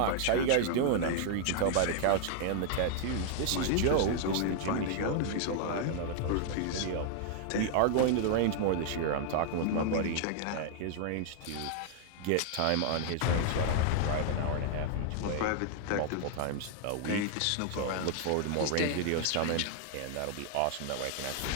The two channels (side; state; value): both; different; correlation 0.00